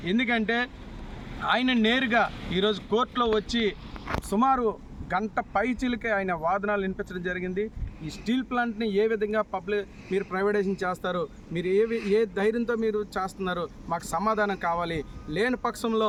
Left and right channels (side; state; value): both; identical; correlation 1.00